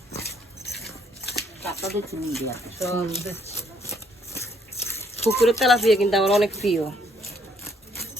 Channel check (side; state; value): both; normal; correlation 0.67